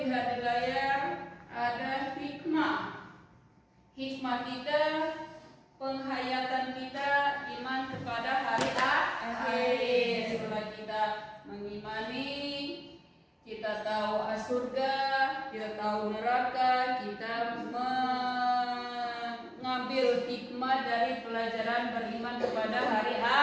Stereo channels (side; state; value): both; identical; correlation 1.00